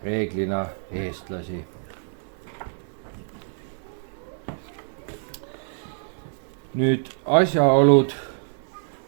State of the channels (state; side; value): silent; left; digital silence